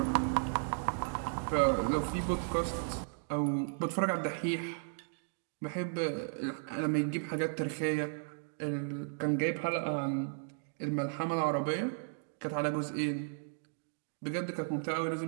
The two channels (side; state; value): left; silent; digital silence